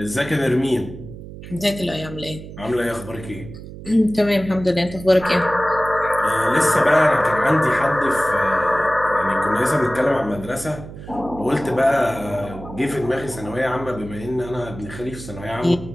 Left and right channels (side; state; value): right; noise; hum, 13 dB below the sound